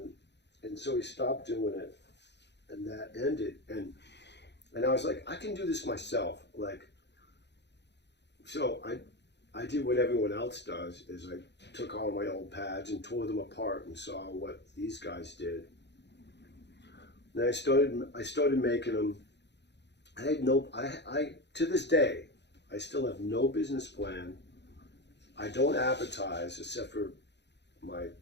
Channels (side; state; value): right; late; 0.50 ms